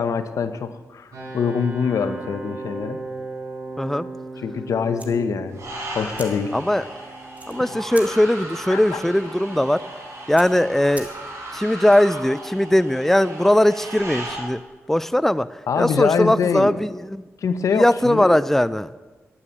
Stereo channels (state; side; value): normal; both; correlation 0.93